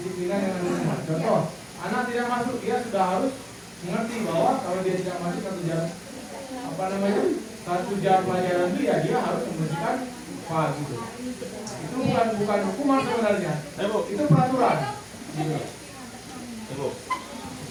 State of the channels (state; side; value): identical; both; correlation 1.00